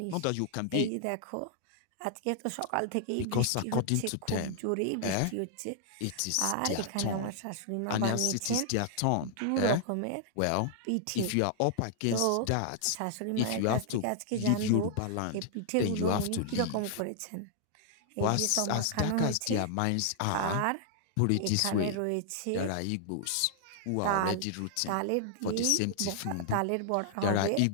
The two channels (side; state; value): both; different; correlation -0.01